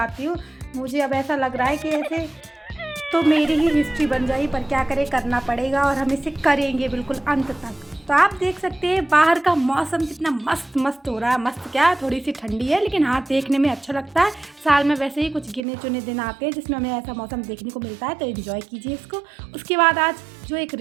हूँ। मुझे अब ऐसा लग रहा है कि ऐसे तो मेरी ही हिस्ट्री बन जाएगी, पर क्या करें, करना पड़ेगा और हम इसे करेंगे बिल्कुल अंत तक। तो आप देख सकते हैं बाहर का मौसम कितना मस्त मस्त हो रहा है। मस्त क्या, थोड़ी सी ठंडी है, लेकिन हाँ देखने में अच्छा लगता है। साल में वैसे ही कुछ गिने चुने दिन आते हैं जिसमें हमें ऐसा मौसम देखने को मिलता है, तो एंजॉय कीजिए इसको। उसके बाद आज जो एक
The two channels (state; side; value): drops out; left; at 15.6 s